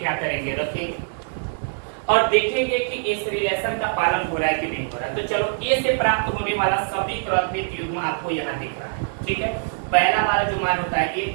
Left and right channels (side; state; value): left; silent; digital silence